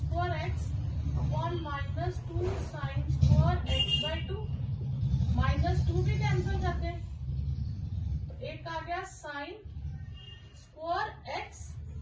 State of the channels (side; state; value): both; identical; correlation 1.00